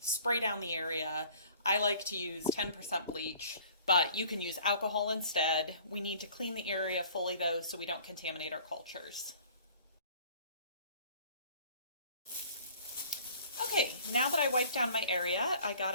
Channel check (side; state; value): both; inverted; correlation -0.51